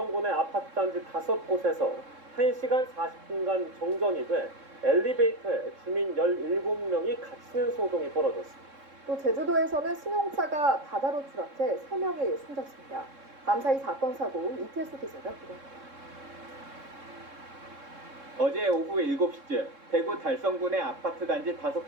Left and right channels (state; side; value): late; left; 3.7 ms